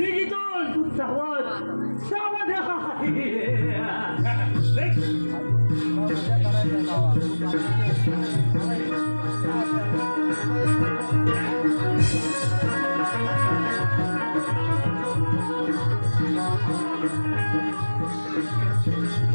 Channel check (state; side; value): inverted; both; correlation -1.00